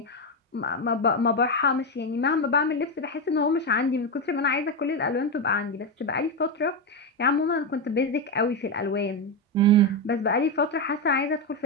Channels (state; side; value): normal; both; correlation 0.10